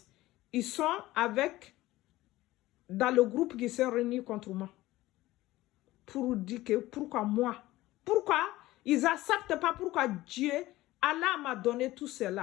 ils sont dans le groupe qui s'est réuni contre moi. Pour dire que, pourquoi moi? Pourquoi ils n'acceptent pas pourquoi Dieu, Allah m'a donné tout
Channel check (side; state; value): right; quieter; 17.3 dB